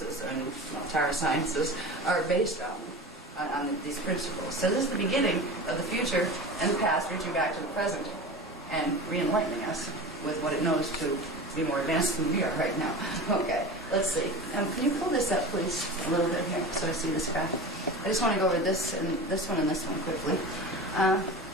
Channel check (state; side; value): normal; both; correlation 0.31